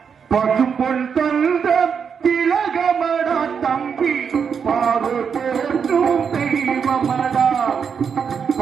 பசும்பொல் தந்த திலகமடா தம்பி பாரு போற்றும் தெய்வமடா.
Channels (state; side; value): quieter; left; 6.7 dB